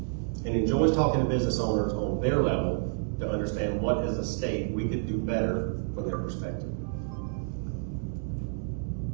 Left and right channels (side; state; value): left; silent; digital silence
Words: enjoys talking to business owners on their level to understand what as a state we could do better from their perspective.